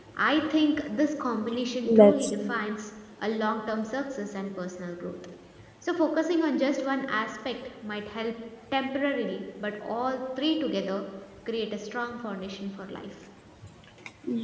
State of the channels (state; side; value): identical; both; correlation 1.00